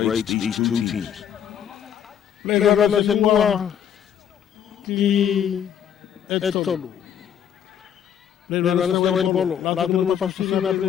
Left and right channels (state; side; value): quieter; right; 9.1 dB